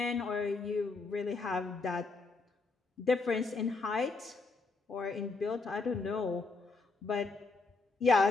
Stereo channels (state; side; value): quieter; right; 3.9 dB